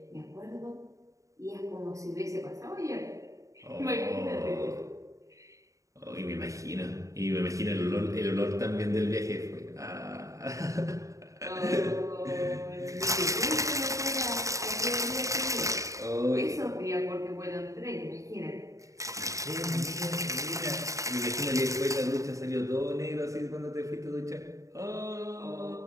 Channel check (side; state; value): left; late; 0.16 ms